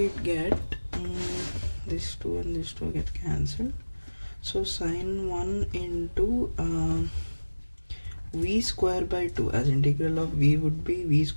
get this 2 and this 2 get cancelled. So sine 1 into v square by 2, as integral of v would be v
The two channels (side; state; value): both; inverted; correlation -1.00